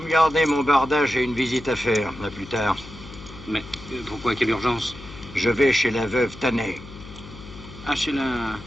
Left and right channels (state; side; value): noise; left; hum, 16 dB below the sound